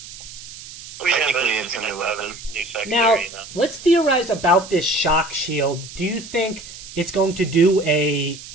Oh, yeah, Technically, it's a new weapon. New secondary, Now, you know. let's theorize about this shock shield. Do you think it's going to do a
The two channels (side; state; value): right; noise; hiss, 15 dB below the sound